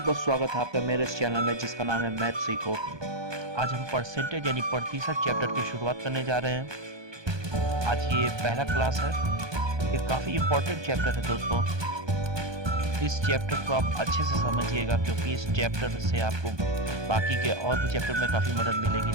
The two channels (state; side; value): late; left; 1.2 ms